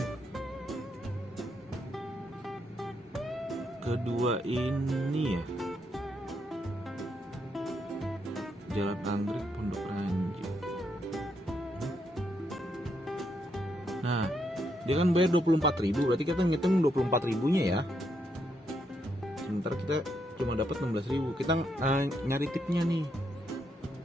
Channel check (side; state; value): both; normal; correlation 0.78